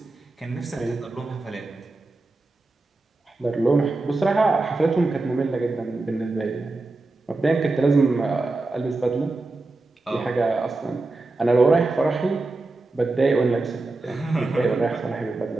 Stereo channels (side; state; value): left; quieter; 3.2 dB